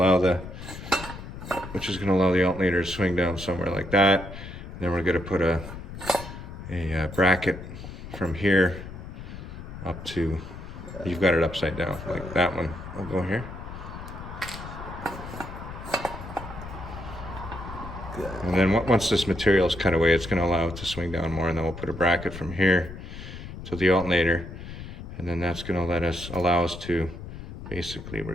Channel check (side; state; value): left; noise; rumble, 11 dB below the sound